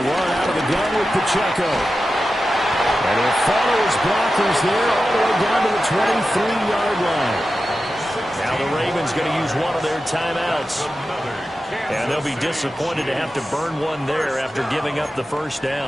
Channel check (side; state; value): both; normal; correlation 0.92